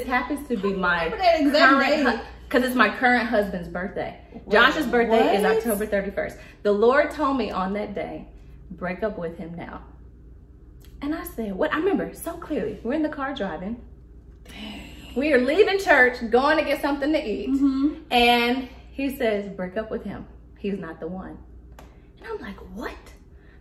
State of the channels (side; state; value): both; identical; correlation 1.00